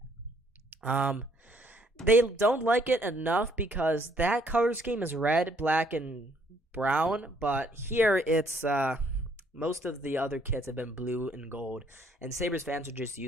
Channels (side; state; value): both; normal; correlation 0.65